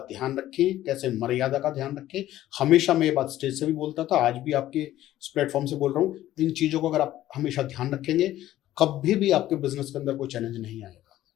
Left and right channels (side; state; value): right; quieter; 13.8 dB